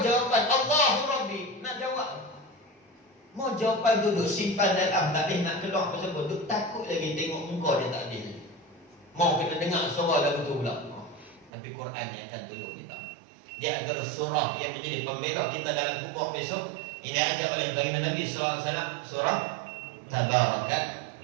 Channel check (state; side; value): drops out; left; at 11.5 s